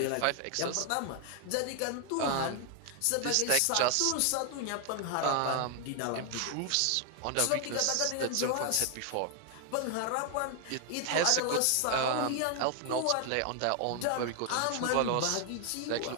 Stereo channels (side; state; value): both; different; correlation 0.00